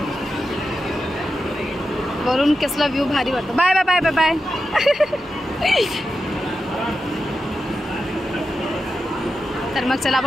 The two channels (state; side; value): normal; both; correlation 0.89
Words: वरून कसला व्ह्यू भारी वाटतो. Bye bye bye bye bye. तर मग चला